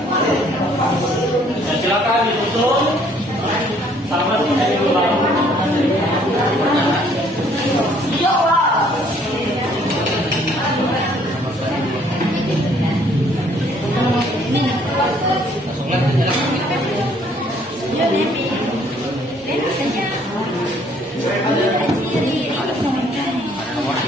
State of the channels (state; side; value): normal; both; correlation 0.62